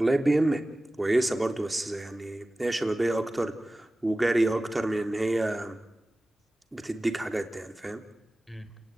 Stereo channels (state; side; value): normal; both; correlation 0.97